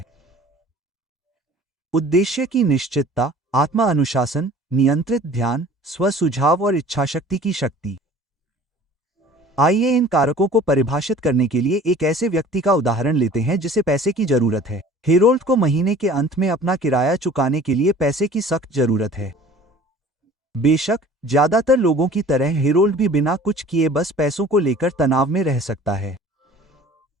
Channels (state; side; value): normal; both; correlation 0.47